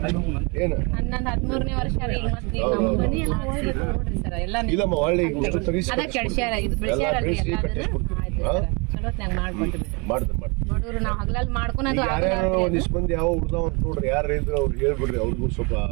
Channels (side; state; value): left; quieter; 30.3 dB